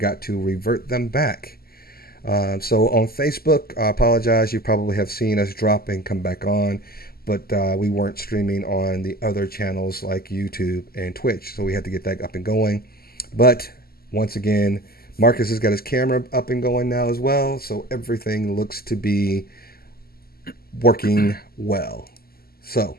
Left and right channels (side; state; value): right; late; 0.44 ms